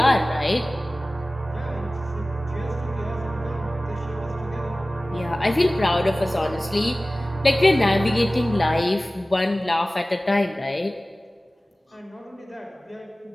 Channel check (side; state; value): both; normal; correlation 0.97